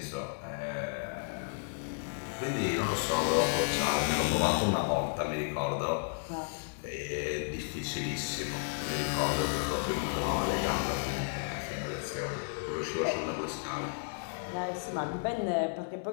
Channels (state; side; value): silent; right; digital silence